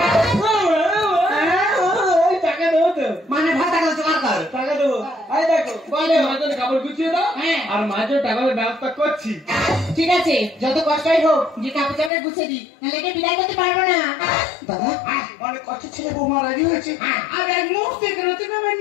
টাকা দেবো তো, মানে ভাত টাকা জোগাড় কর। টাকা দেবো দেখো বলো। মাঝে কাপড় গুছিয়ে দাও হ্যাঁ। আর মাঝে টাকার ব্যবস্থা করছি। ঠিক আছে, যত কষ্টই হোক যে কাপড় চাপড় গুছিয়ে দি, নাহলে একে বিদায় করতে পারবো না। দাদা অনেক কষ্ট ছেলে বৌমা রাজি হয়েছে আর এক মুহূর্তে এখানে তুমি আমায়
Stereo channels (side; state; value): right; drops out; at 12.1 s